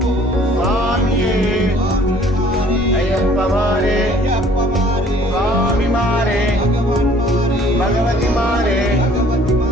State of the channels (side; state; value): both; normal; correlation 0.56